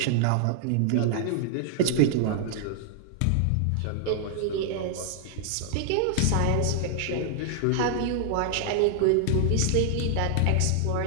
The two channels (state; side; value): different; both; correlation -0.01